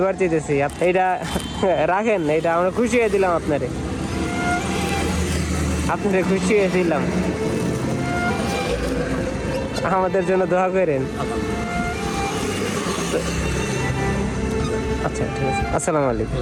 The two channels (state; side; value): identical; both; correlation 1.00